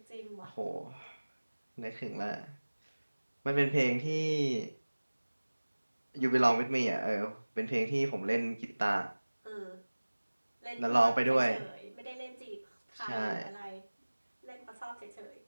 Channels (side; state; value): both; inverted; correlation -1.00